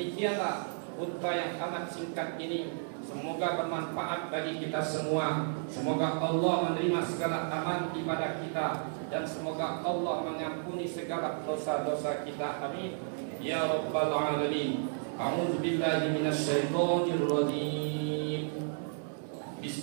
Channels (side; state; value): left; silent; digital silence